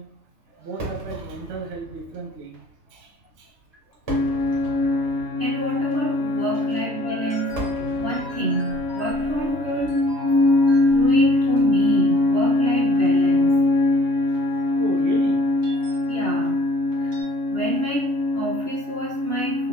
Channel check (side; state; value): left; late; 2.9 ms